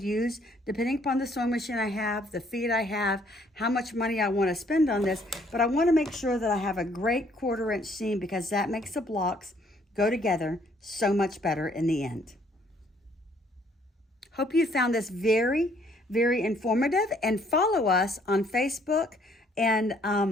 use depending upon the sewing machine I have, the feet I have, how much money I want to spend on this. But I want to make sure that I have a great 1/4 inch seam, because that makes the blocks go together so much better in the end. Hope you found this very, very informative, and follow us on Facebook and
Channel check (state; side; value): normal; both; correlation 0.64